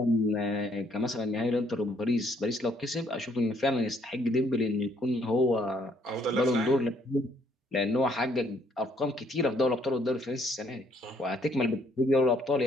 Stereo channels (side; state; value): both; normal; correlation 0.66